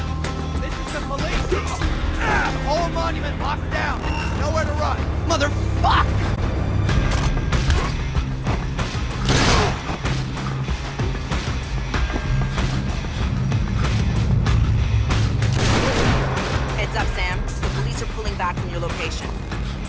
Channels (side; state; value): both; identical; correlation 1.00